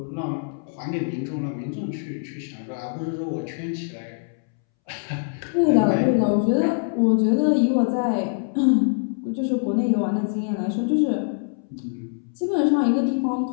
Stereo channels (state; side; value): silent; right; 63 dB below the other